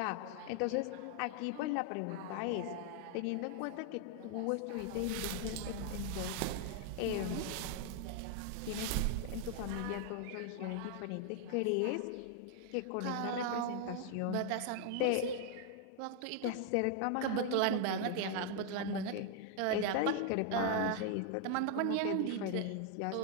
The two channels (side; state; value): both; different; correlation 0.00